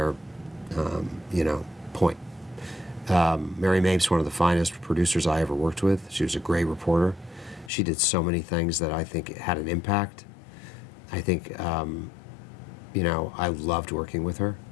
you know, point. Mary Mapes, one of the finest producers I ever worked with. She was a great reporter. She did so many things that I think had an impact. I think, you know, I loved working with her.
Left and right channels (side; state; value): right; drops out; at 7.7 s